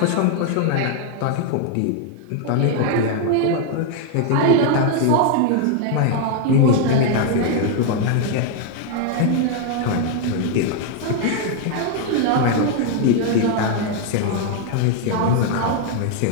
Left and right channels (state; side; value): different; both; correlation 0.00